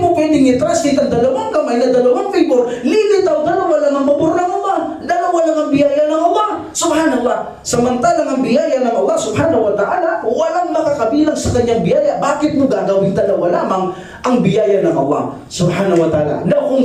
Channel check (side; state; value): both; identical; correlation 1.00